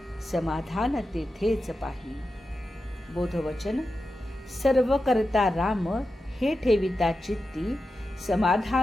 समाधान तेथेच पाही. बोधवचन. सर्व करता राम, हे ठेविता चित्ती.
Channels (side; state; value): both; normal; correlation 0.91